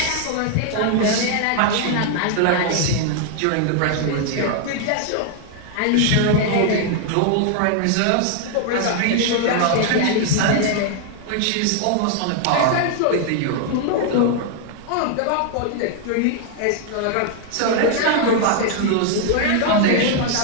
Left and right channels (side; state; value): both; different; correlation 0.00